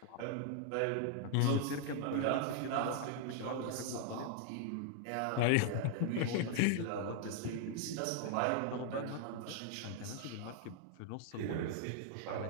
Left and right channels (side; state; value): both; different; correlation 0.00